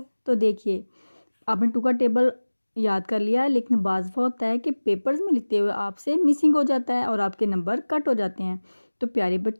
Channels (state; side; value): inverted; both; correlation -1.00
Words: तो देखिए, आपने टू का टेबल याद कर लिया, लेकिन बाज़ दफ़ा होता है कि पेपर्स में लिखते हुए आपसे मिसिंग हो जाता है और आपके नंबर कट हो जाते हैं। तो प्यारे